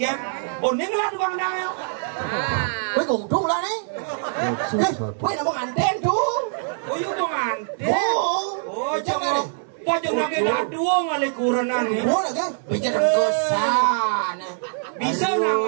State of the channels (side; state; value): left; silent; 58 dB below the other